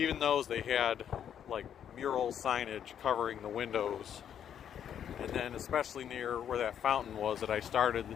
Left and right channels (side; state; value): right; quieter; 9.1 dB